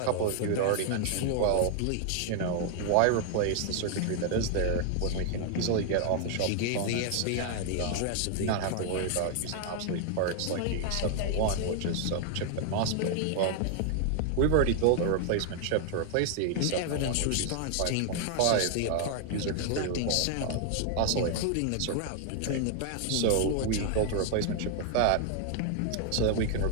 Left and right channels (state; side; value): different; both; correlation 0.00